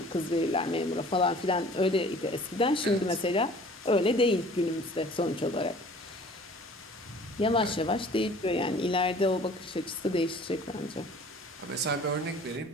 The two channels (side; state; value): both; normal; correlation 0.49